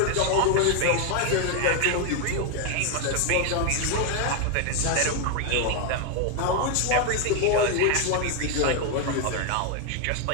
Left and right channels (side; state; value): both; different; correlation 0.00